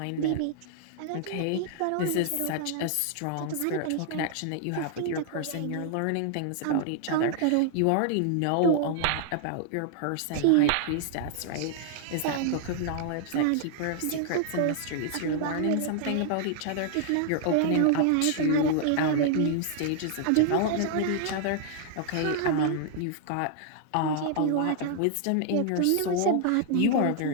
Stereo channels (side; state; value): both; different; correlation -0.01